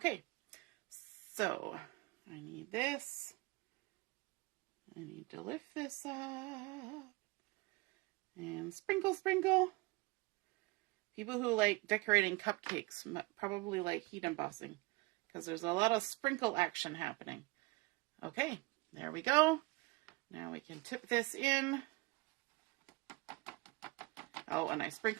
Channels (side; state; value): left; quieter; 24.1 dB